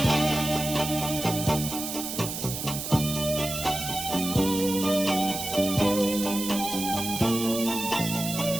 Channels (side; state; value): right; noise; hiss, 6 dB below the sound